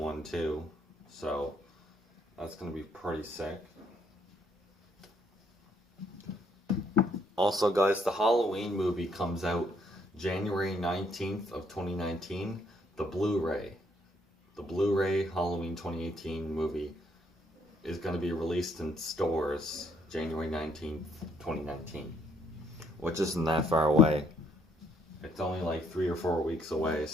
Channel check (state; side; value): normal; both; correlation 0.69